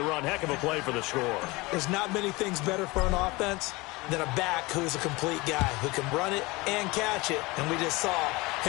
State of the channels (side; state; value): right; quieter; 23.0 dB